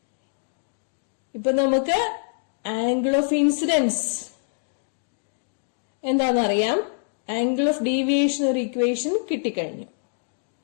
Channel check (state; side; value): silent; right; digital silence